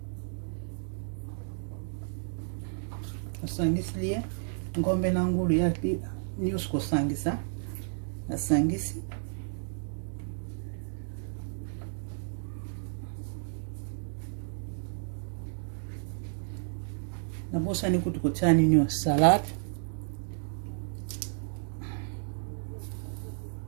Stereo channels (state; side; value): silent; left; digital silence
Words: Osangisi liye. Ngombe na ngulu ya nyusu kosangisa. Asangisi. Nabosa ni kutu kochani nyo salad.